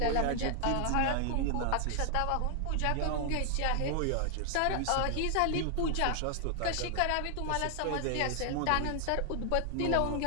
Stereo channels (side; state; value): both; different; correlation 0.00